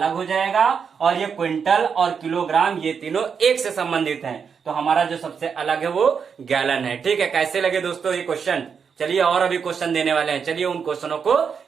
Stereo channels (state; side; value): quieter; left; 6.4 dB